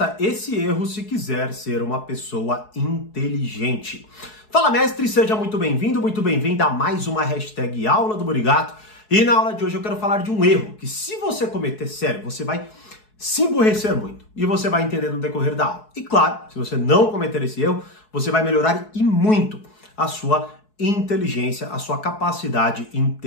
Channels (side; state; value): right; late; 4.7 ms